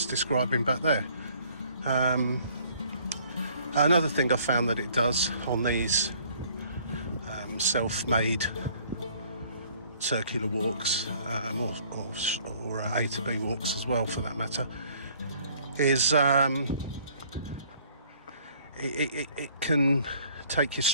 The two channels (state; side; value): inverted; both; correlation -0.59